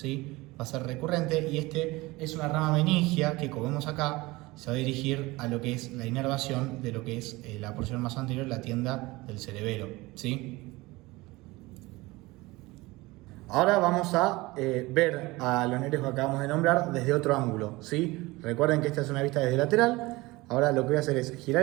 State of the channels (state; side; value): quieter; left; 21.4 dB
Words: Va a ser recurrente y este es una rama meningia que, como vemos acá, se va a dirigir a lo que es la inervación de lo que es la porción más anterior, la tienda del cerebelo, ¿sí? Ahora vamos a ver a los nervios que acabamos de nombrar desde otro ángulo, ¿sí? Recuerden que esta es una vista desde lateral. Ahora lo que voy a hacer es girar